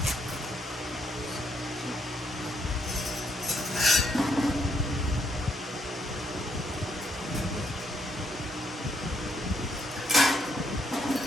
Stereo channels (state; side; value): normal; both; correlation 0.74